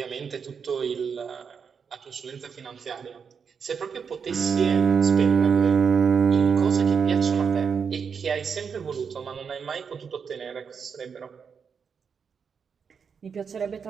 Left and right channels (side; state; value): left; quieter; 6.4 dB